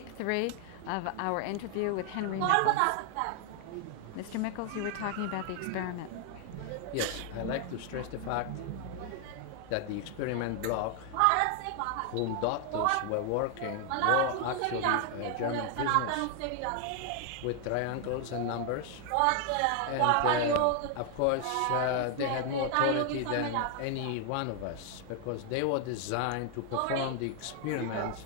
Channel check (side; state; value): both; different; correlation 0.00